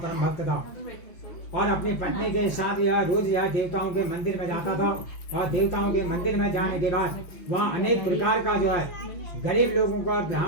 भक्त था, और अपनी पत्नी के साथ यह रोज यह देवताओं के मंदिर में जाता था। और देवताओं के मंदिर में जाने के बाद वहाँ अनेक प्रकार का जो है गरीब लोगों को,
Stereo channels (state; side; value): late; right; 6.0 ms